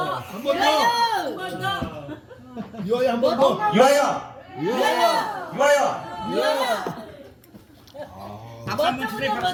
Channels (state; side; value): identical; both; correlation 1.00